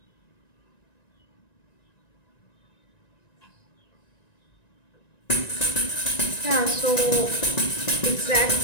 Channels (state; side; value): late; right; 1.9 ms